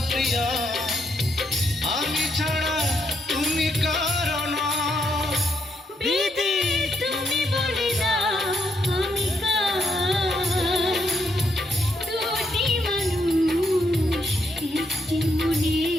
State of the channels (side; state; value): both; normal; correlation 0.77